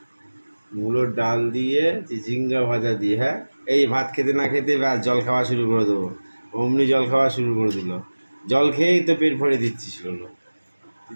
মুলোর ডাল দিয়ে চিচিঙ্গা ভাজা দিয়ে। হ্যাঁ, এই ভাত খেতে না খেতে ব্যাস জল খাওয়া শুরু করে দেবো। অমনি জল খাওয়া শুরু করে দিল। জল খেয়েই তো পেট ভরে দিচ্ছিস লোলো। তুই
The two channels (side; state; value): both; inverted; correlation -1.00